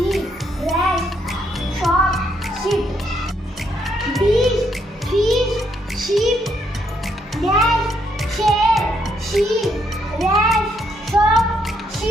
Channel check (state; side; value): normal; both; correlation 0.74